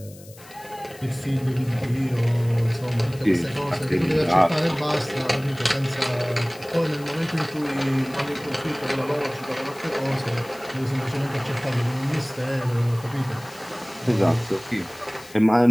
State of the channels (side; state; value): left; noise; hiss, 21 dB below the sound